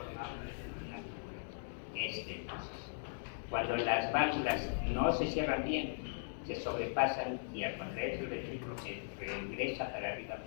una estenosis. Cuando las válvulas no se cierran bien, se sobrepasan y al contrario el ventrículo se regresa para arriba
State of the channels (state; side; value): silent; right; digital silence